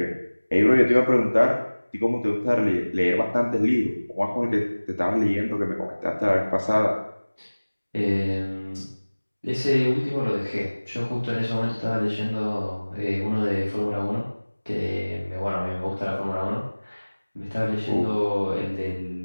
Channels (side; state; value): both; inverted; correlation -1.00